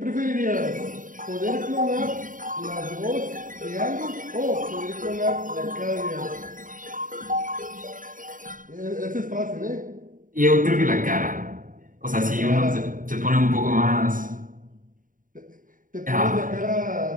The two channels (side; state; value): left; late; 0.39 ms